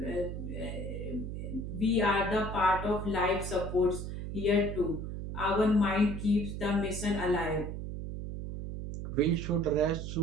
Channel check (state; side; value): noise; right; hum, 6 dB below the sound